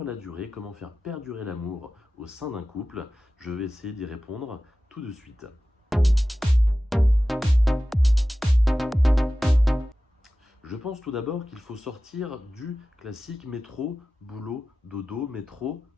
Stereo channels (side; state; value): both; normal; correlation 0.95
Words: la durée? Comment faire perdurer l'amour au sein d'un couple? Je vais essayer d'y répondre tout de suite. Je pense tout d'abord qu'il faut sortir du classique métro, boulot, dodo, métro,